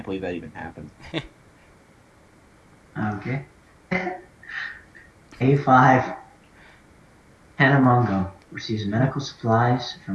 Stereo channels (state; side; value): identical; both; correlation 1.00